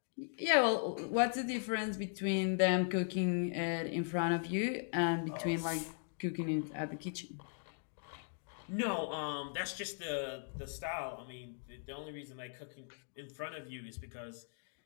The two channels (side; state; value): right; silent; digital silence